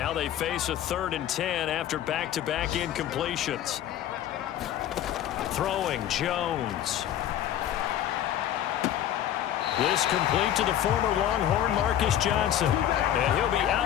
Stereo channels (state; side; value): quieter; right; 11.2 dB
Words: they face a 3rd and 10 after back-to-back incompletions. Throwing, Jones. This complete to the former Longhorn Marcus Johnson. And he'll be